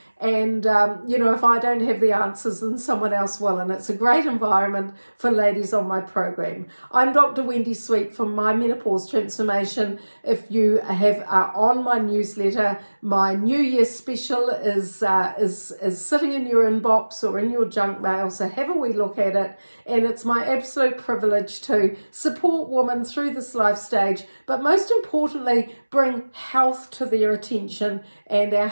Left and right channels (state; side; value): inverted; both; correlation -1.00